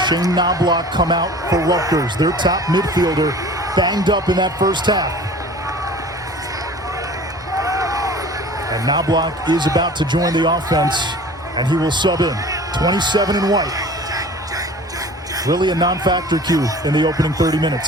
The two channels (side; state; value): both; normal; correlation 0.43